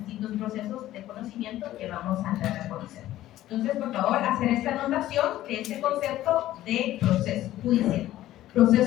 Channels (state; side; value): quieter; right; 14.3 dB